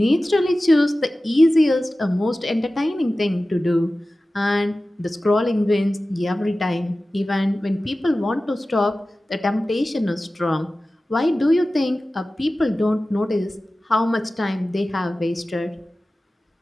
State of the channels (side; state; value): both; normal; correlation 0.96